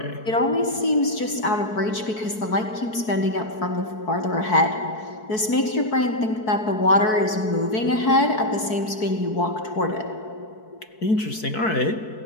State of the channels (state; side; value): late; right; 4.6 ms